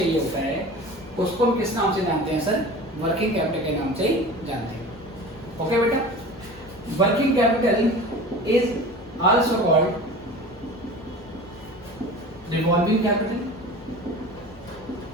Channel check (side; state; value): both; normal; correlation 0.37